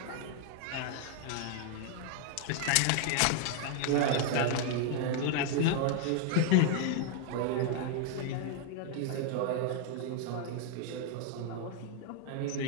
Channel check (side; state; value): both; different; correlation 0.00